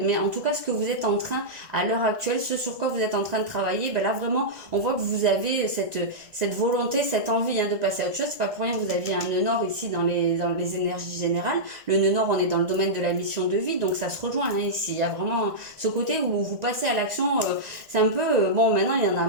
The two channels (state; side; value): late; left; 1.9 ms